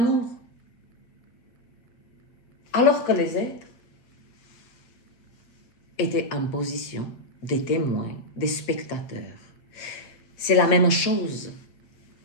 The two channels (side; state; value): right; late; 8.0 ms